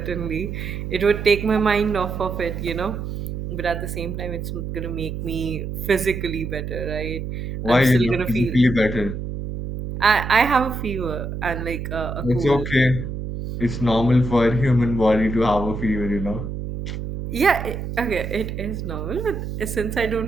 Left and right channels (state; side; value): noise; right; hum, 6 dB below the sound